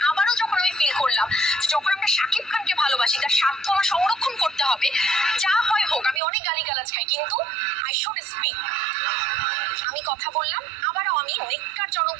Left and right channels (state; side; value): drops out; left; at 6.2 s